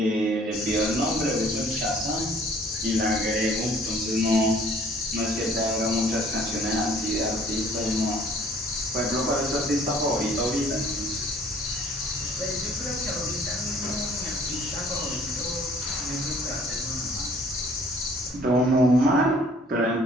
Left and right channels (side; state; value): both; normal; correlation 0.55